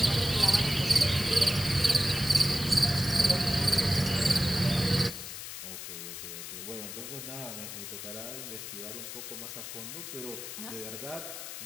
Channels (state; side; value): noise; left; hiss, 9 dB below the sound